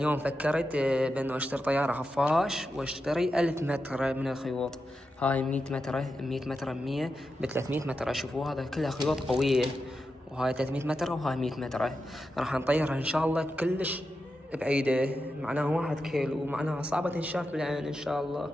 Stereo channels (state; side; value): normal; both; correlation 0.89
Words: يوم فكرت بأنه أشتري طيارة خفاش وأشتري 1000 متر من الخيوط. هاي 100 متر 100 متر 100 ب300 متر. شوفوا هذا كلها خيوط قوية، وهاي 300 متر وهاي 100 متر. راح نطيرها إن شاء الله كلش بعيدة، معناها 1 كيلو، ومعناها صعبة تنشاف بالعين إن شاء الله